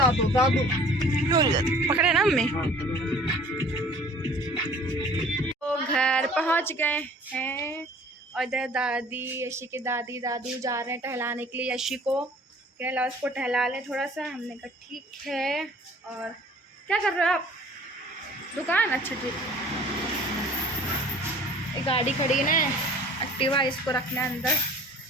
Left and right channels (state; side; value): normal; both; correlation 0.50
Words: पकड़े ना मम्मी। तो घर पहुंच गए हैं और इधर दादी, यशी के दादी दादू जा रहे हैं टहलाने के लिए। यशी को कह ला उसको टहला लें थोड़ा सा। हमने कहा ठीक है। और क्या कर रहे हो आप? दुकान? अच्छा ठीक। एक गाड़ी खड़ी है ना एक्टिवा, इसको रखना है अंदर।